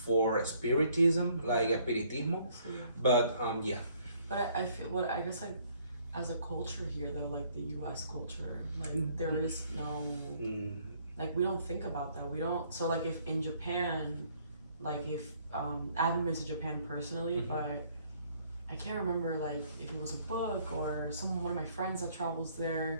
for spiritism, like espiritismo. But But I feel I guess like as a culture here though, like the U.S. culture, like there is no like we don't think about that. We don't. So like if in Japan, like if I haven't been to Japan personally, but I can't remember like if it was a book or one of my friends that travels there.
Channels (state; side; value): inverted; both; correlation -0.63